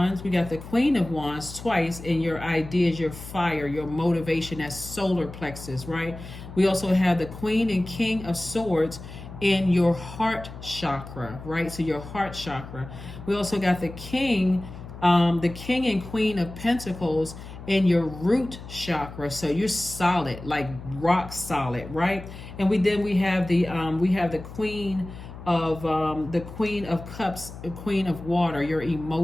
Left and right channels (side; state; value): left; noise; hum, 13 dB below the sound